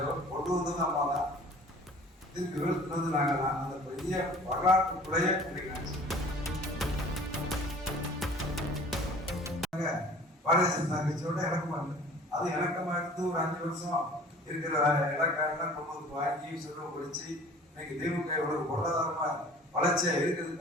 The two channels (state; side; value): normal; both; correlation 0.47